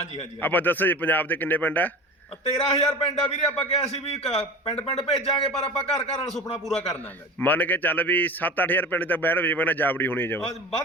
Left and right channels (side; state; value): both; normal; correlation 0.34